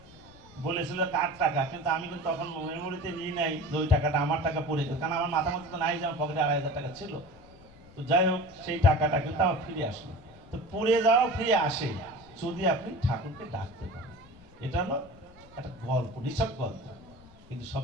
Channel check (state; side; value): normal; both; correlation 0.37